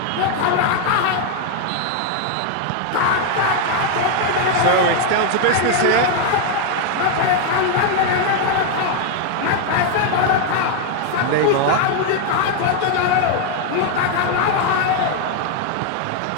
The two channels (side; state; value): both; different; correlation 0.01